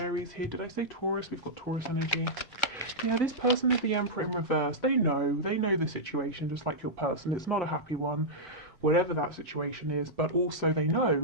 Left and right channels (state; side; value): normal; both; correlation -0.09